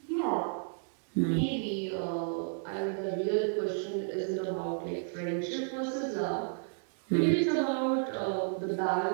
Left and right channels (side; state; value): left; silent; digital silence